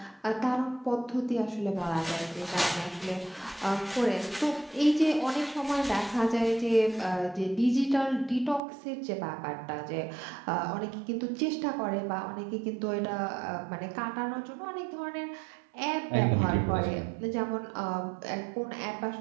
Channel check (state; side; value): drops out; left; at 8.6 s